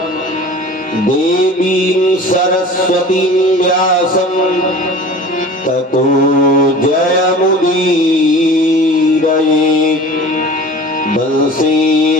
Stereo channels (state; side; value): normal; both; correlation 0.40